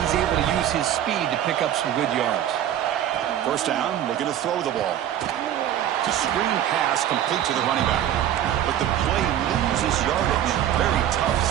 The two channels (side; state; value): left; quieter; 11.1 dB